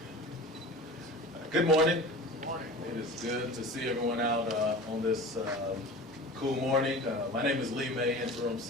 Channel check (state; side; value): normal; both; correlation 0.37